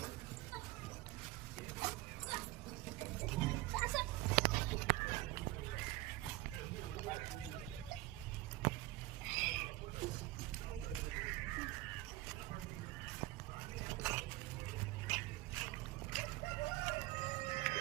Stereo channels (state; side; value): quieter; left; 18.4 dB